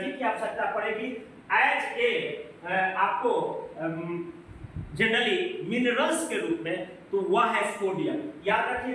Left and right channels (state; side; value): identical; both; correlation 1.00